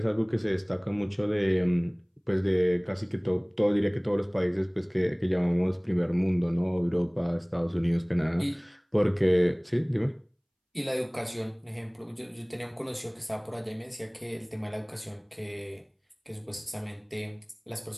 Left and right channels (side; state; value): both; identical; correlation 1.00